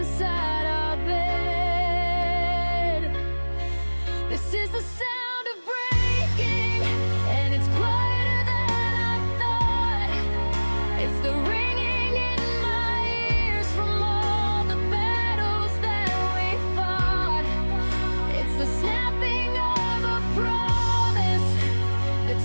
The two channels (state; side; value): inverted; both; correlation -1.00